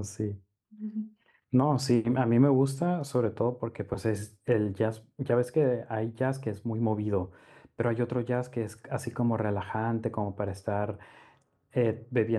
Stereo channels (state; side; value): identical; both; correlation 1.00